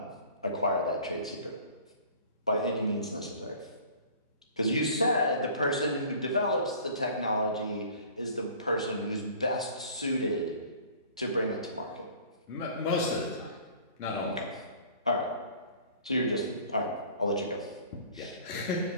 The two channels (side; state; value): both; inverted; correlation -0.48